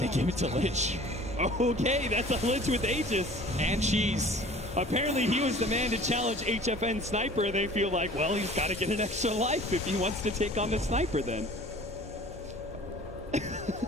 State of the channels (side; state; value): both; normal; correlation 0.46